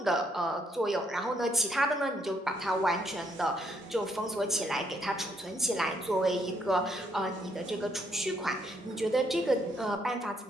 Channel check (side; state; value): both; normal; correlation 0.72